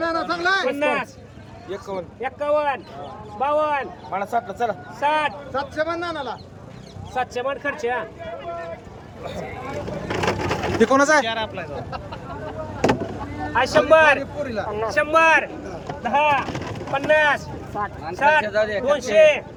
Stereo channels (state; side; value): identical; both; correlation 1.00